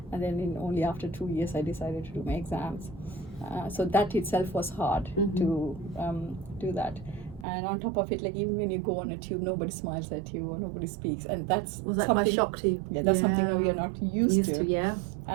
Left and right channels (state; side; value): drops out; left; at 7.5 s